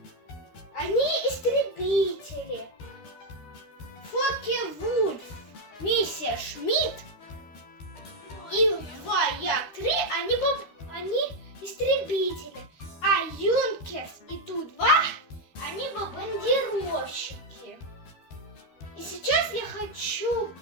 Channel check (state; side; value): late; right; 13 ms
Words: истребители. Фоке-Вульф, мистер Шмидт и 2, я 3, они истребители. А Юнкерс и Ту-2, они бомбардировщики. И сейчас я хочу